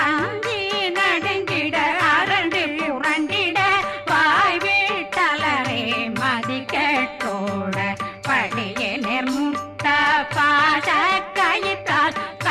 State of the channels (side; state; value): both; identical; correlation 1.00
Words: அஞ்சி நடுங்கிட அரண்டு புரண்டிட வாய் வீட்டலரே மதி கேட்டோட படியே நிர்முட்ட பாச கயிற்றால்